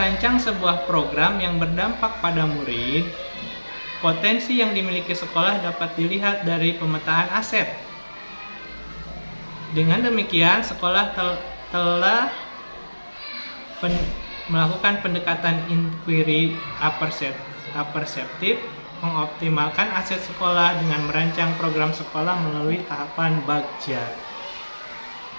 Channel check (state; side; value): inverted; both; correlation -1.00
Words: sebuah program yang berdampak pada murid, potensi yang dimiliki sekolah dapat dilihat dari pemetaan aset. Dengan demikian, sekolah telah melakukan pendekatan inquiry aperseptif, mengoptimalkan aset sekolah dengan merancang program sekolah melalui tahapan bagja.